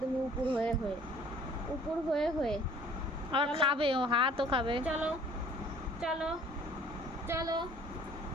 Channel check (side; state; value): both; normal; correlation 0.53